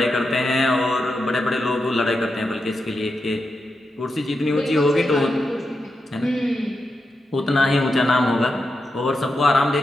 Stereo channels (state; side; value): normal; both; correlation 0.87